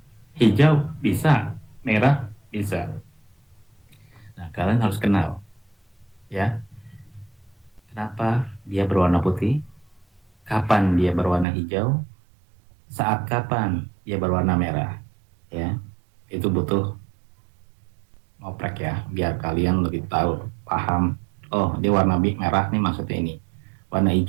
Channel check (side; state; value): left; drops out; at 11.5 s